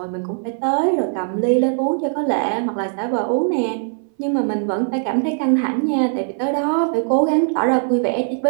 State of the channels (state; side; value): silent; left; 59 dB below the other